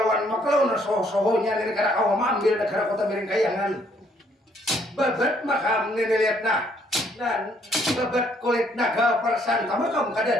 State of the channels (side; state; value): both; normal; correlation 0.67